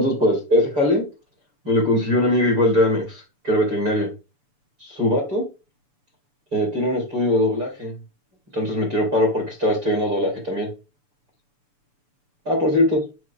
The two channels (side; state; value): left; late; 6.9 ms